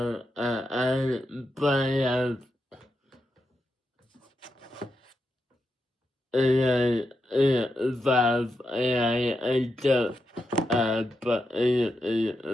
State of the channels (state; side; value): normal; both; correlation 0.86